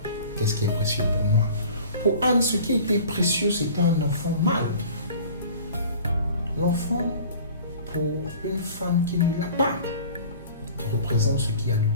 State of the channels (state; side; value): inverted; both; correlation -0.44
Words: Qu'est-ce qui est précieux pour moi? Pour Anne, ce qui était précieux, c'était un enfant mâle. L'enfant, pour une femme qui ne l'a pas, représente ce qu'il y a de